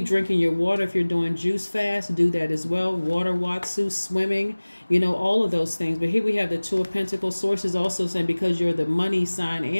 drinking your water. If you're doing juice fast, do that as well. Water, watsu, swimming, all of those things. But here we have the Two of Pentacles. Source is also saying because you're the money sign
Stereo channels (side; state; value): both; inverted; correlation -1.00